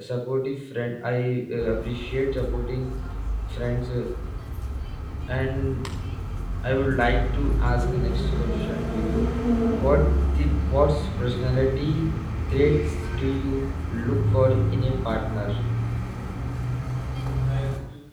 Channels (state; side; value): identical; both; correlation 1.00